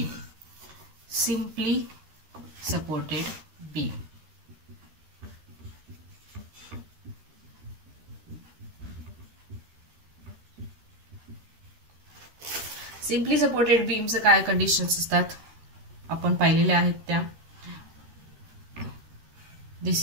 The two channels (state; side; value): late; left; 13 ms